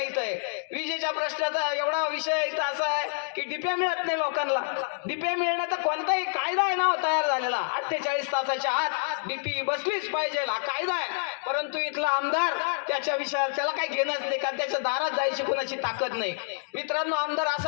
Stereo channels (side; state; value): right; silent; digital silence